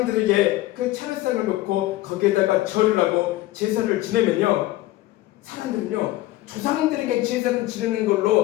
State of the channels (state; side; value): quieter; right; 16.7 dB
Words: 그 차례상을 놓고 거기에다가 절을 하고 제사를 지내면요, 사람들은요, 조상들에게 제사를 지내는